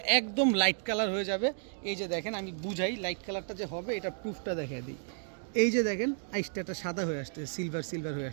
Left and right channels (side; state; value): left; silent; digital silence